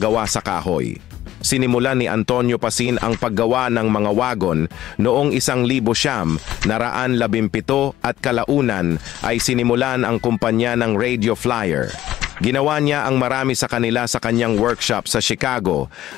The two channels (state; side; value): quieter; right; 13.6 dB